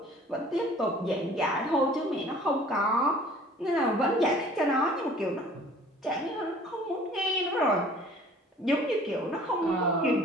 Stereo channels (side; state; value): both; normal; correlation 0.50